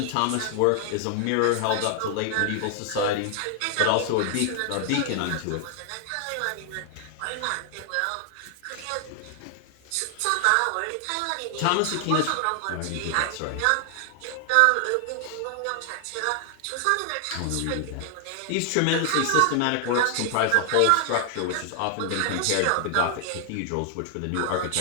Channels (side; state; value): both; different; correlation 0.00